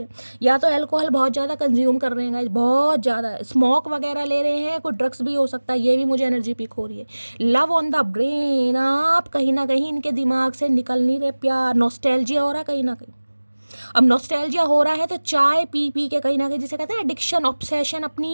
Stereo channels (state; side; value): inverted; both; correlation -1.00